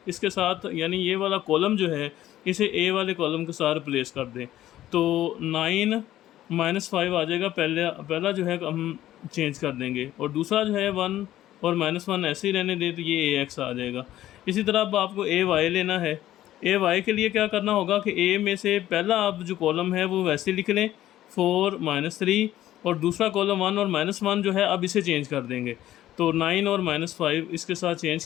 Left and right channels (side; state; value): right; quieter; 13.5 dB